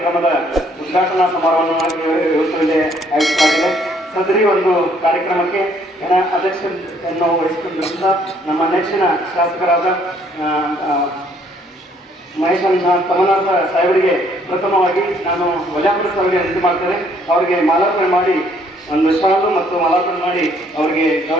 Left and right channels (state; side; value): normal; both; correlation 0.65